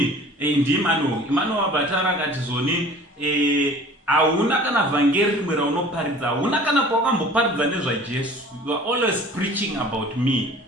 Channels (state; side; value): normal; both; correlation 0.46